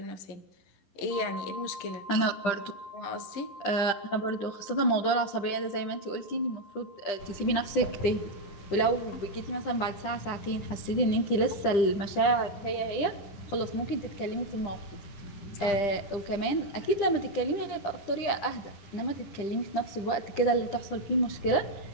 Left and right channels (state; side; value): late; right; 10 ms